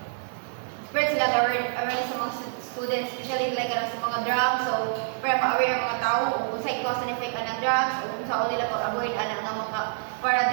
spread sila awareness sa mga students, especially like sa mga drugs. So para ma-aware ang mga tao kung sa cause and effect ng drugs o kung saan nila pag-avoid ang mga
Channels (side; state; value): left; silent; digital silence